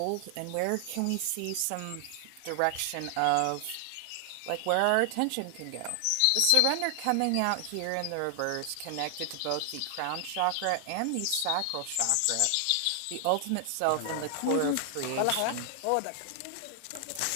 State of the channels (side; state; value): both; different; correlation 0.00